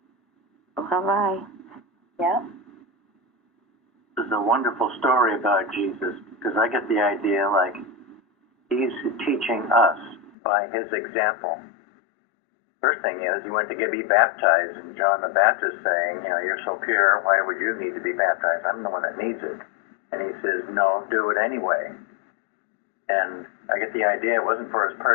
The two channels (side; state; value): right; drops out; at 10.3 s